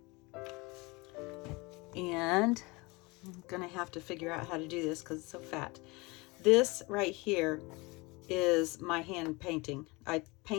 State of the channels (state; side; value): quieter; right; 25.1 dB